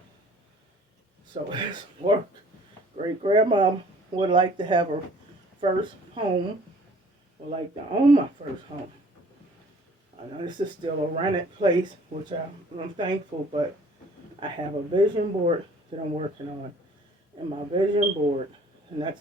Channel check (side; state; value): both; normal; correlation 0.53